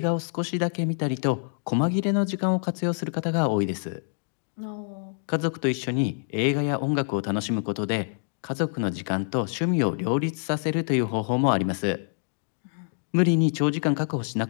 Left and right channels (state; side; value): silent; right; digital silence